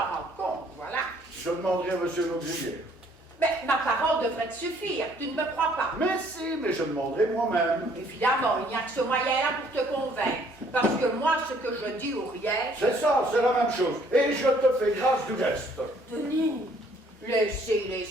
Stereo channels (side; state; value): both; normal; correlation 0.62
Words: compte, voilà. Je demanderai à monsieur l'auxiliaire. Mais ma parole devrait te suffire, tu ne me crois pas. Mais si, mais je demanderai moi-même. Évidemment, il n'y a que ce moyen-là pour te convaincre. Parce que moi, ce que je dis ou rien... C'est ça, c'est la même chose. Et je te fais grâce du reste. Denis.